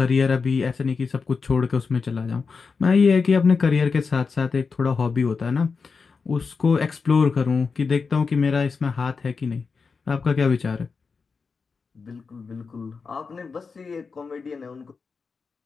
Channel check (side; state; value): right; quieter; 5.0 dB